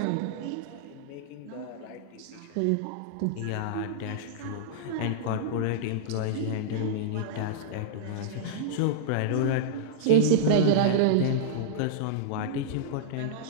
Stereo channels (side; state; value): both; different; correlation -0.02